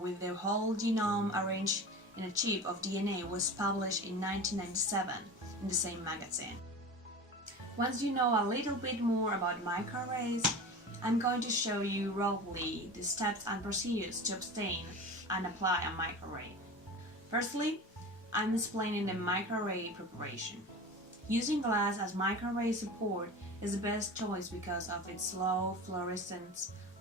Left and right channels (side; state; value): both; normal; correlation 0.32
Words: the whole genome arranged in a chip of DNA was published in 1997 in the same magazine. Once you know a little bit more about microarrays, I'm going to show you roughly the steps and procedures to obtain and apply a microarray. Firstly, I'm explaining the microarray preparation. Using glass as microarray support is the best choice because of its low fluorescence,